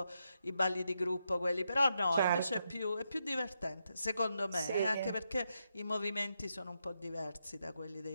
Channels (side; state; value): both; inverted; correlation -0.83